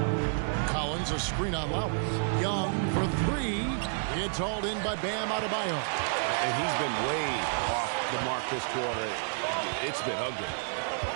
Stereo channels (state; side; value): silent; left; 58 dB below the other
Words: Collins, a screen on Lowry. Young for 3. It's hauled in by Bam Adebayo. And he's been way off the mark this quarter. It's been ugly.